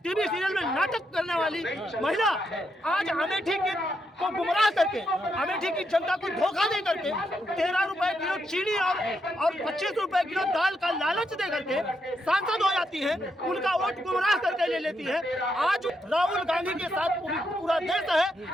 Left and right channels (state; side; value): normal; both; correlation 0.80